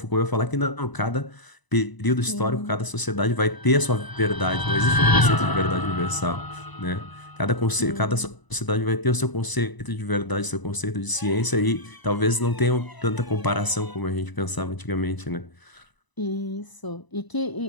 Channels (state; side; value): late; right; 1.0 ms